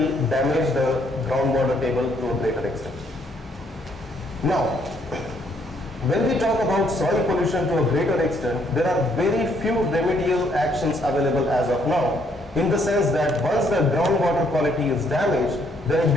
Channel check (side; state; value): both; normal; correlation 0.69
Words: damage the groundwater table to a greater extent. Now, when we talk about soil pollution to a greater extent, there are very few remedial actions available as of now, in the sense that once the groundwater quality is damaged, then it